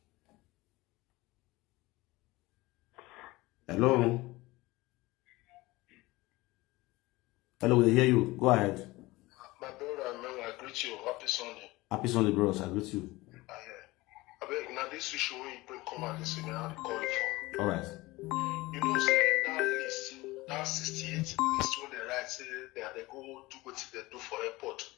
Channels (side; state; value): right; quieter; 20.5 dB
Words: Hello. Hello, we hear you. Go ahead. My brother, I greet you. Happy Sunday. Happy Sunday, bros. I greet you. I beg, rhetoric. Now this issue when you bring come and listen, how they call it for. All right. You know, say that list, that 68 list when they write, say they go do what they do for airport.